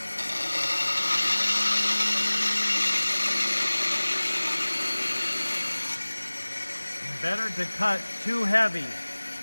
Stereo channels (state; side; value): inverted; both; correlation -1.00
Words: Better to cut too heavy